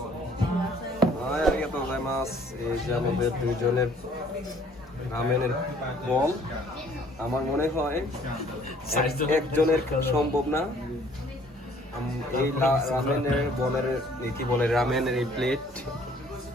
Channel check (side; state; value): both; normal; correlation 0.58